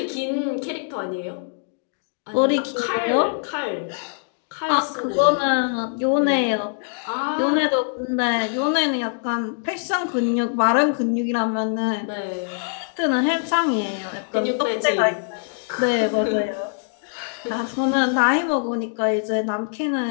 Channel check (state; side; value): silent; right; digital silence